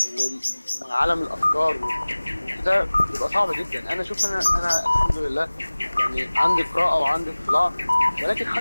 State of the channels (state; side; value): inverted; both; correlation -1.00